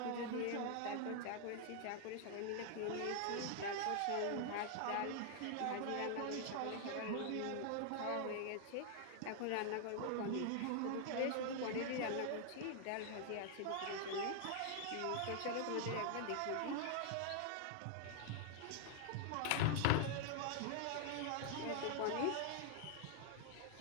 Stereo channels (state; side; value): different; both; correlation 0.00